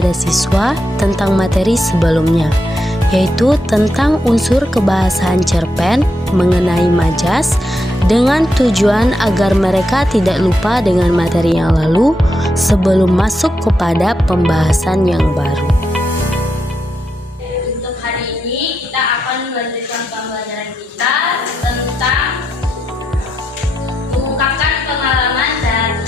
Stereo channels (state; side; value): normal; both; correlation 0.82